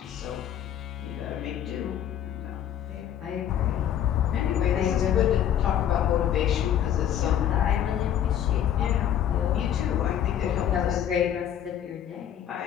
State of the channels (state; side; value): quieter; right; 10.2 dB